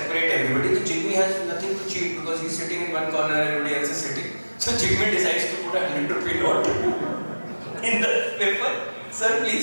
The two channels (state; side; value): inverted; both; correlation -1.00